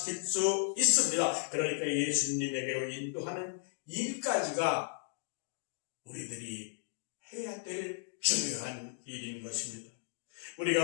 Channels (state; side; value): silent; right; digital silence